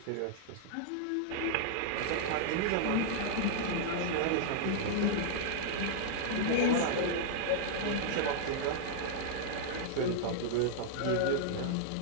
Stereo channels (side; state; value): both; different; correlation -0.01